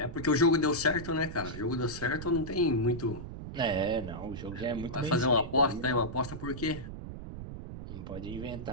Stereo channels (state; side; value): noise; right; rumble, 9 dB below the sound